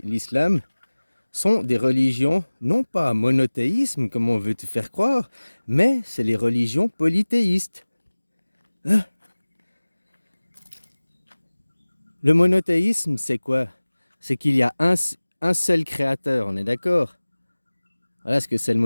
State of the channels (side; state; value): both; inverted; correlation -1.00